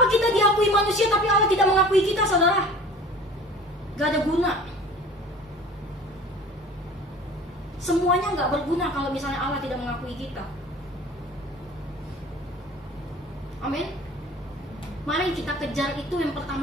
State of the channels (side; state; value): both; normal; correlation 0.44